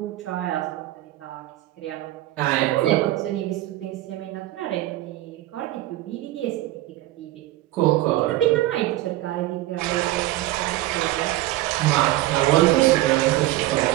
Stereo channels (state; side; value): quieter; left; 16.4 dB